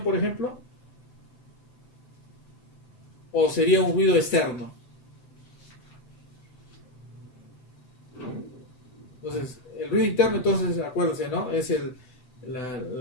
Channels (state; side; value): late; right; 7.8 ms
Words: por ejemplo. ¿O sería un ruido externo? Entonces, el ruido interno, entonces, acuérdense, ¿no? Es el